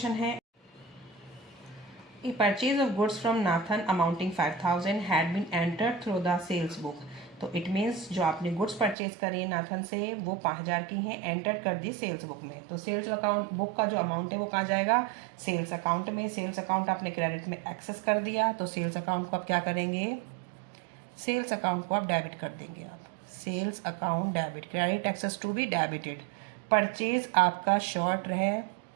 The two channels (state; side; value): drops out; left; at 9.0 s